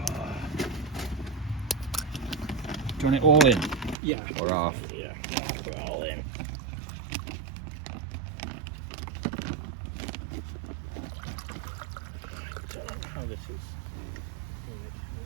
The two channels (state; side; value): drops out; left; at 4.0 s